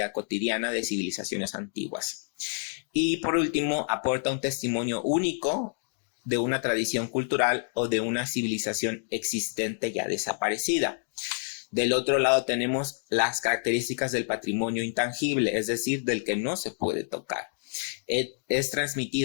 cotidiana de civilizaciones antiguas. Y por último, aporta un testimonio único de una tradición cultural o de una civilización existente ya desaparecida. Del otro lado tenemos las características del patrimonio intangible, es decir, del que no se puede tocar. Es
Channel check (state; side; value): silent; right; digital silence